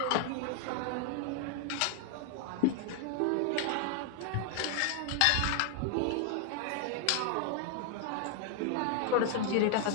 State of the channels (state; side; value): different; both; correlation 0.00